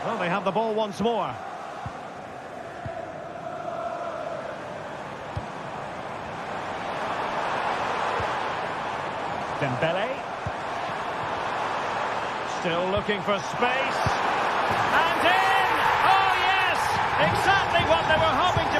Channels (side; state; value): both; identical; correlation 1.00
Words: Well, they have the ball once more. Dembele. Still looking for space. And in! Oh, yes! Exactly what they were hoping to